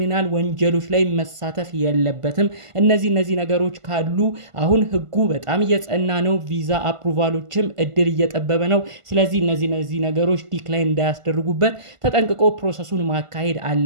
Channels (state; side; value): late; left; 1.5 ms